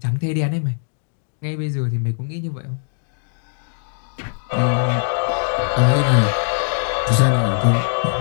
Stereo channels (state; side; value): silent; right; digital silence